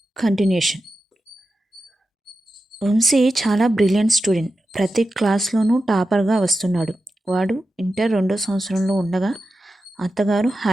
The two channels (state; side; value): normal; both; correlation 0.90